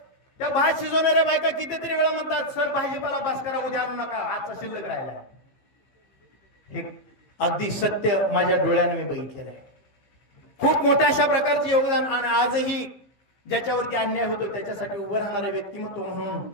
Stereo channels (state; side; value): late; right; 15 ms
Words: त्या भात शिजवणाऱ्या बायका कितीतरी वेळा म्हणतात, सर भाजीपाला बस करा, उद्या आणू नका, आजचा शिल्लक राहिला. हे अगदी सत्य माझ्या डोळ्याने मी बघितलेलं आहे. खूप मोठ्या अशा प्रकारचे योगदान. आणि आजही ज्याच्यावरती अन्याय होतो त्याच्यासाठी उभं राहणारे व्यक्तिमत्व